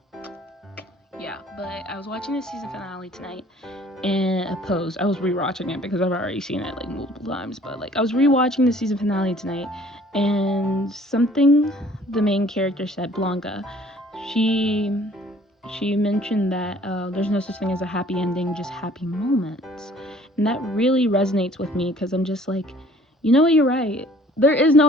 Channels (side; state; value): both; normal; correlation 0.55